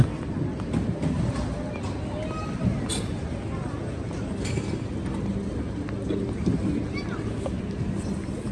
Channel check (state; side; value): identical; both; correlation 1.00